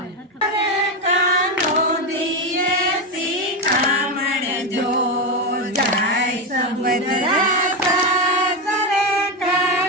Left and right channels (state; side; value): normal; both; correlation 0.12